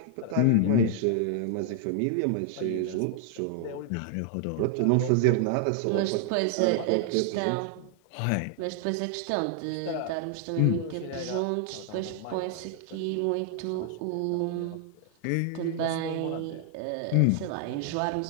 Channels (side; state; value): both; different; correlation 0.00